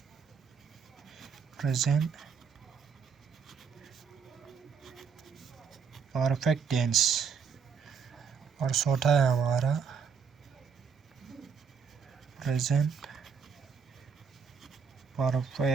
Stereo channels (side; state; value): left; quieter; 6.2 dB